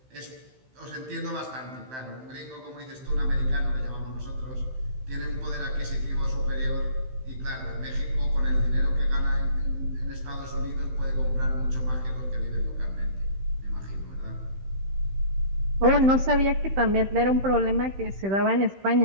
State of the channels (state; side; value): late; left; 15 ms